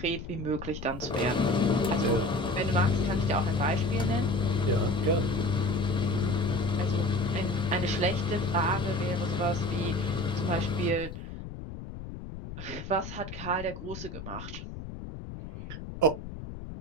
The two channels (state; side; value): noise; left; rumble, 10 dB below the sound